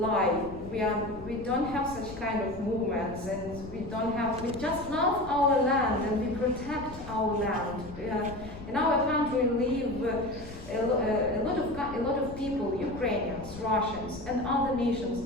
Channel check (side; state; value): left; noise; rumble, 15 dB below the sound